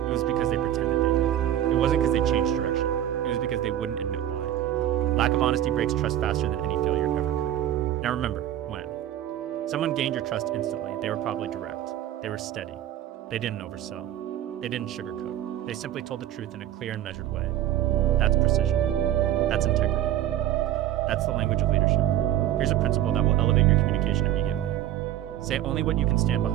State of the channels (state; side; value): quieter; left; 12.2 dB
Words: It was because they pretended they did. It wasn't because they changed direction. It was because they wouldn't admit why. Lack of honesty breaks trust faster than any failure ever could. Now remember, when someone gained your trust instantly, they were probably direct. They were steady. They didn't oversell. They didn't sugarcoat. They simply told the truth in a clear and measured way. That's precision. That's integrity. That's the language of leadership. Here's a principle that will elevate your communication immediately. Say only what you can stand